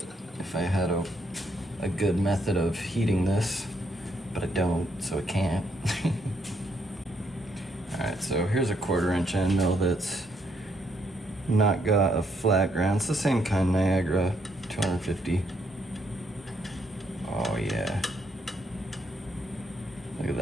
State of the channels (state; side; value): normal; both; correlation 0.73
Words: if I had a good method of heating this, but I don't, so I can't. Alright, so here's a 1/4" end mill that's not got a flat ground. It's the same kind, Niagara, 250. Oh yeah. Look at